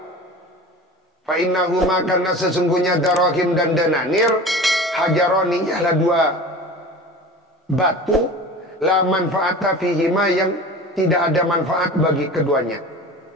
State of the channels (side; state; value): both; normal; correlation 0.36